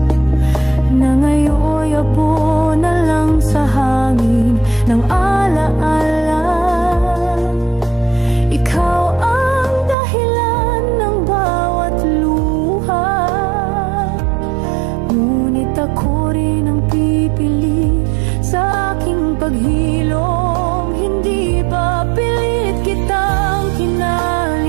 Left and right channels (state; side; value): drops out; left; at 10.0 s